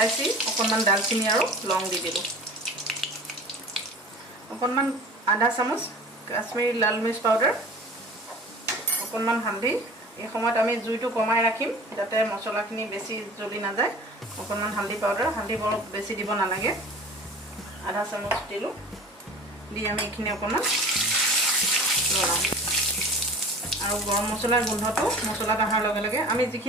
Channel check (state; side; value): normal; both; correlation 0.41